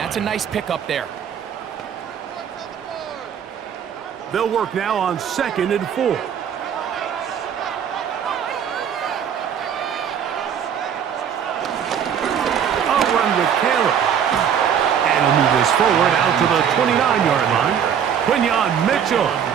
a nice pickup there. They'll work now on 2nd and 4. A run with Caleb. And he'll move this forward out to the 29-yard line. Quinyon Mitchell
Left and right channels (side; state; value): left; quieter; 8.3 dB